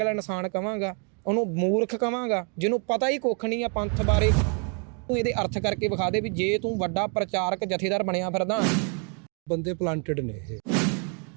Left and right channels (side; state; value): left; quieter; 38.8 dB